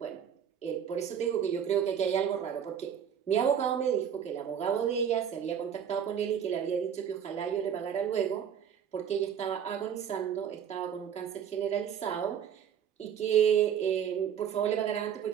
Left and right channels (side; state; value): left; quieter; 8.5 dB